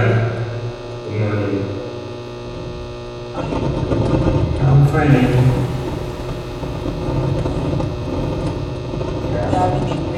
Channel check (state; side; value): identical; both; correlation 1.00